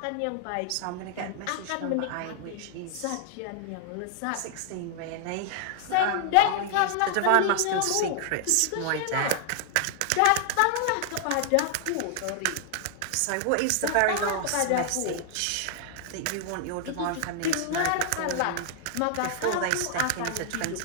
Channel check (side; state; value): both; different; correlation 0.00